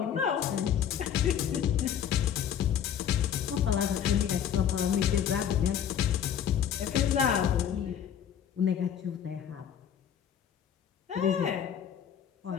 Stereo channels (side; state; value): right; quieter; 9.0 dB